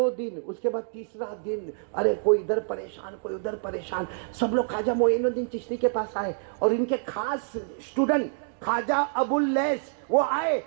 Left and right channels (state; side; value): silent; left; digital silence